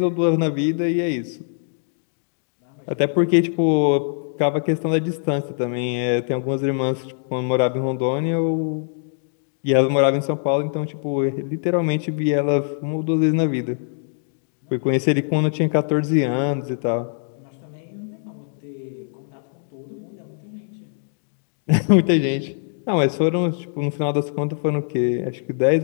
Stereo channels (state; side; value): silent; right; digital silence